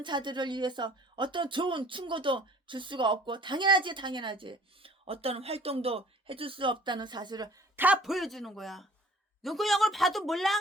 자들을 위해서 어떤 좋은 충고도 줄 수가 없고 당연하지. 어떤 활동도 해줄 수 없다는 사실을 다 보여주는 거야. 눈구녕을 봐도 몰라?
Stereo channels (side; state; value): both; normal; correlation 0.51